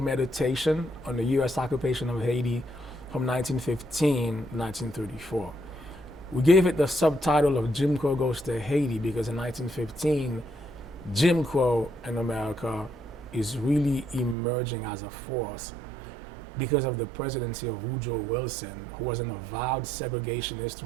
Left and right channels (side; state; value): left; drops out; at 14.4 s